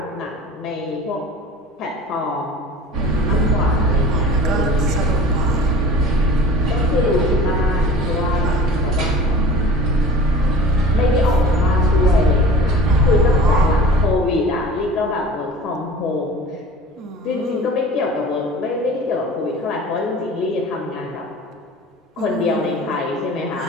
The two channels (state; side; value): normal; both; correlation 0.40